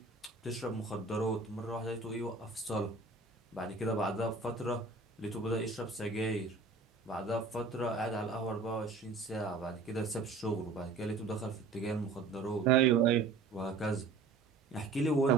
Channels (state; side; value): quieter; left; 4.1 dB